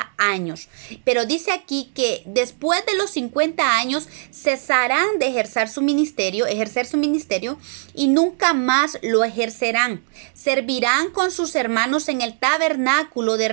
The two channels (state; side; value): silent; left; digital silence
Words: años. Pero dice aquí que después de los 50 años cesarán de ejercer su ministerio, y nunca más lo ejercerán. Servirán con sus hermanos en el tabernáculo de